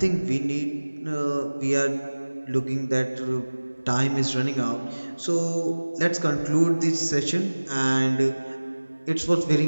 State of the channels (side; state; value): both; inverted; correlation -1.00